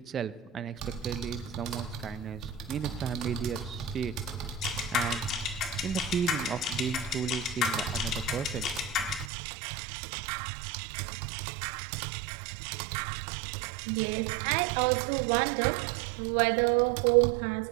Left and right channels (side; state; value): left; drops out; at 9.3 s